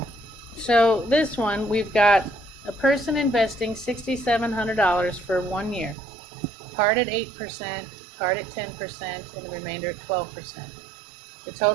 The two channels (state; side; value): drops out; left; at 6.0 s